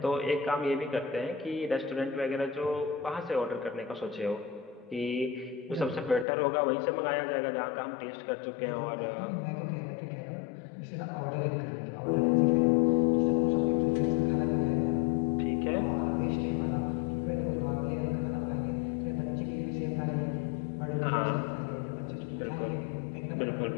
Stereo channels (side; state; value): right; drops out; at 6.2 s